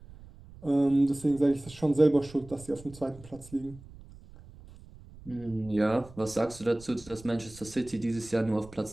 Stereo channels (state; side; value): noise; right; rumble, 20 dB below the sound